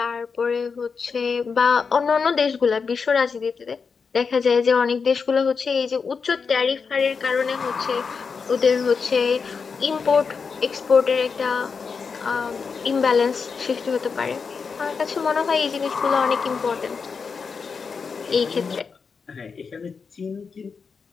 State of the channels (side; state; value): right; quieter; 5.4 dB